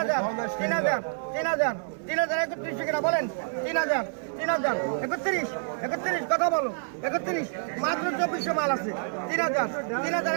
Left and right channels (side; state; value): left; silent; 56 dB below the other